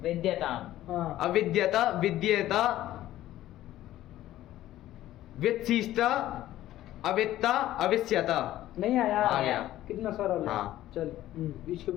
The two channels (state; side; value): quieter; right; 14.1 dB